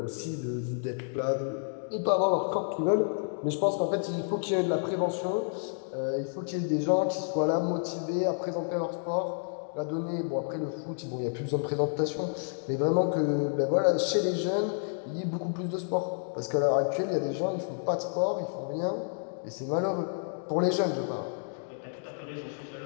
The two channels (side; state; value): right; silent; digital silence